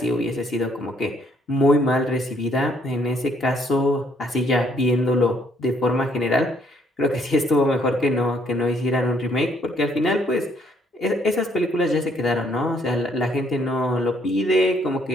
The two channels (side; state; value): both; normal; correlation 0.67